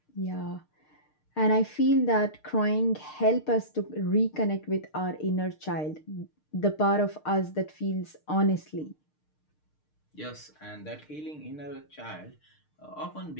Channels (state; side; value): late; right; 6.6 ms